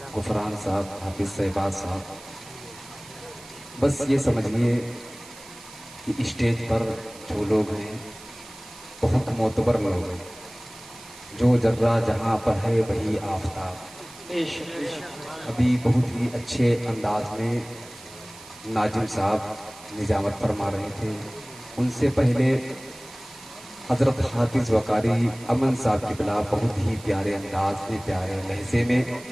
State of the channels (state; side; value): noise; right; hiss, 18 dB below the sound